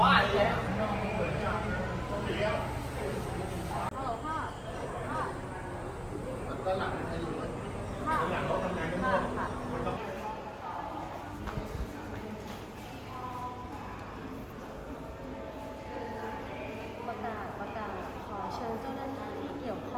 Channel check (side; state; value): both; identical; correlation 1.00